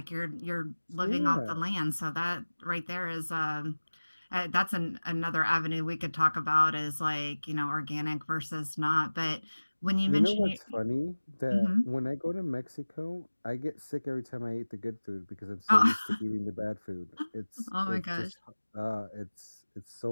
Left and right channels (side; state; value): both; inverted; correlation -1.00